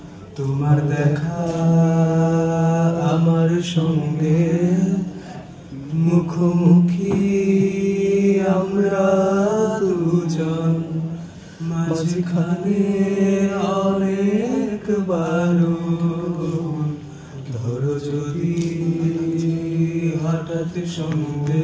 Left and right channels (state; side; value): identical; both; correlation 1.00